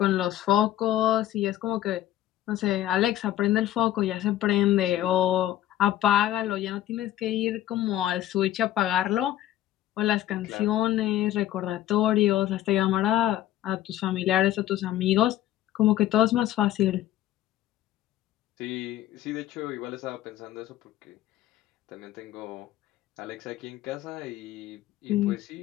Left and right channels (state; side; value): quieter; right; 13.4 dB